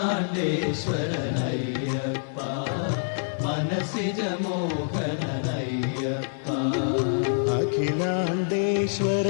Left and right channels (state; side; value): silent; right; 61 dB below the other